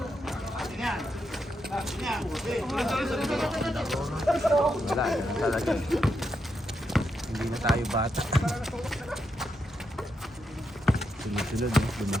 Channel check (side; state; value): both; normal; correlation 0.83